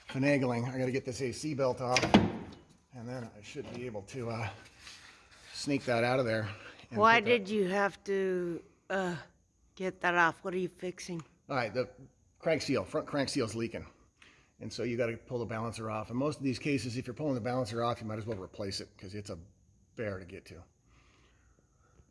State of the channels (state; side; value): identical; both; correlation 1.00